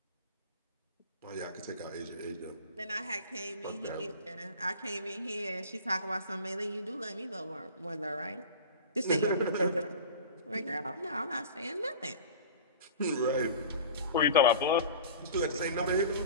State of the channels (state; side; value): inverted; both; correlation -0.36